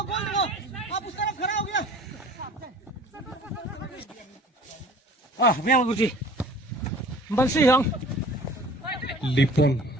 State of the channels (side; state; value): both; normal; correlation 0.47